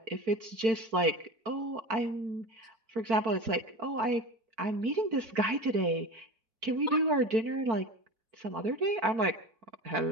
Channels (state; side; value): late; left; 4.5 ms